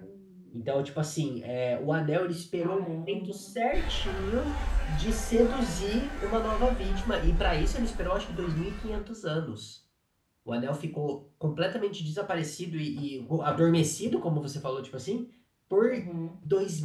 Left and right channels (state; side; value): identical; both; correlation 1.00